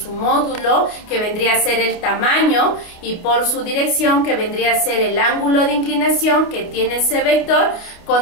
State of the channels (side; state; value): right; late; 28 ms